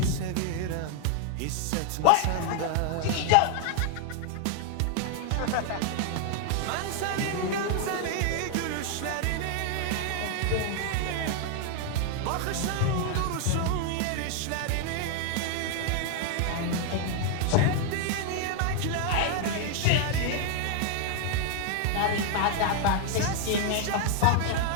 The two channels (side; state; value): both; different; correlation 0.00